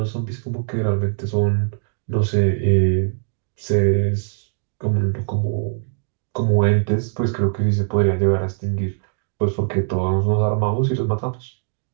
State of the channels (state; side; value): silent; left; digital silence